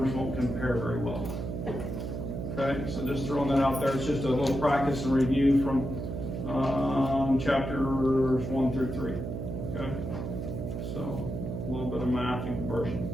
won't compare very well. Okay, so just throwing that out there. It's just a little practice and review from chapters 1 through 3. Okay, so a little bit of math and conversion.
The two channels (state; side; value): noise; right; hum, 5 dB below the sound